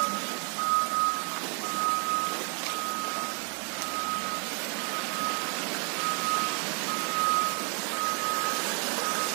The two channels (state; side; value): quieter; left; 39.0 dB